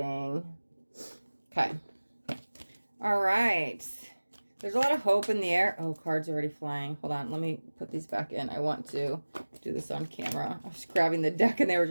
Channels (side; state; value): both; inverted; correlation -1.00